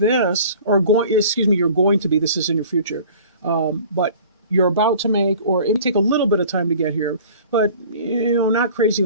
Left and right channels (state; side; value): inverted; both; correlation -0.46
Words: going to be, this is in your future, but you're about to make, or it may take a little bit of time to get here, but, not crazy